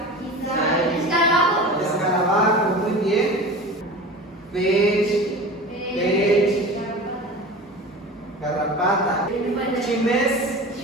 Escarabajo, muy bien. Pech. Garrapata. Chimes.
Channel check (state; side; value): normal; both; correlation 0.34